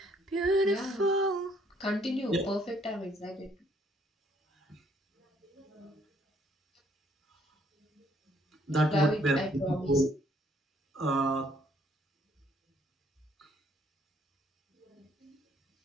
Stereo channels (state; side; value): normal; both; correlation 0.66